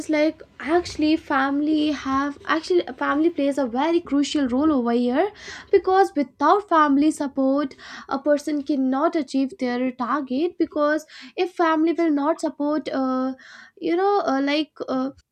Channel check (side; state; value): both; identical; correlation 1.00